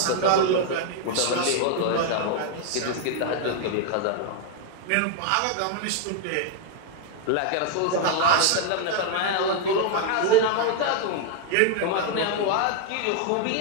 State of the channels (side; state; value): both; different; correlation 0.00